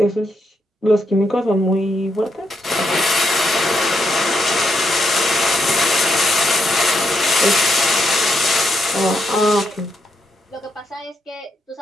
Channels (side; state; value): both; normal; correlation 0.78